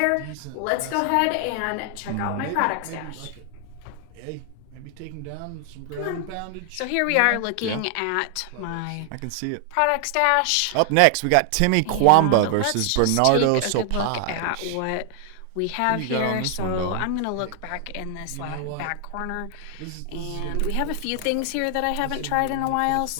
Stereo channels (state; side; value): different; both; correlation 0.00